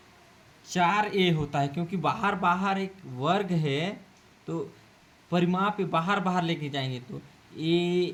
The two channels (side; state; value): both; identical; correlation 1.00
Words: 4a होता है, क्योंकि बाहर एक वर्ग है तो परिमाप बाहर लेके जाएंगे तो a